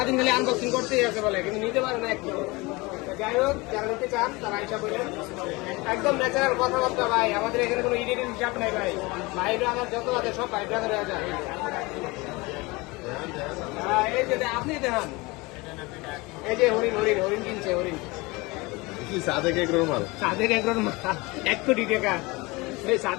খালি আনবক্সিং করতেই আছে বলে, কিন্তু নিতে পারে না একটু। যাই হোক, যারা নিতে চান তারা হিসাব করেন। একদম ন্যাচারাল কথাবার্তা ভাই, আমাদের এখানে কোনো ইডিটের হিসাব নাই ভাই। ভাই ব্রাদার যত আছে সব ভাই ব্রাদার হয়ে যায়। এই যে আপনি দেখান, এই যে হরিণ হরিণ হরিণ কিনছে, হরিণ সাদেক এগ্রোর মাল, সাদের একজন মাল 1 কোটি টাকা। এই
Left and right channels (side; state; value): right; quieter; 24.0 dB